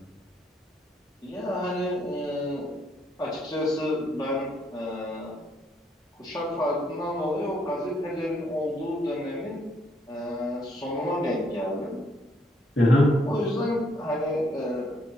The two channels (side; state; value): both; normal; correlation 0.71